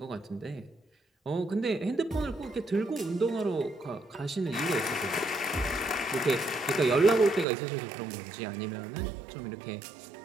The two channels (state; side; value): drops out; left; at 7.5 s